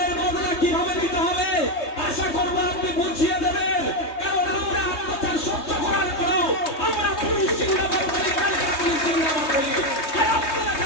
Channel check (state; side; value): late; right; 3.2 ms